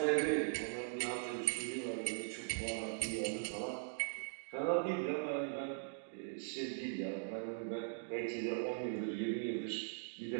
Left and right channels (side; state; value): left; silent; digital silence